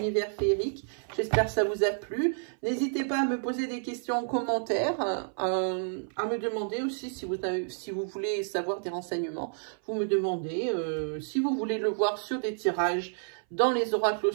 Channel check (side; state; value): left; silent; 58 dB below the other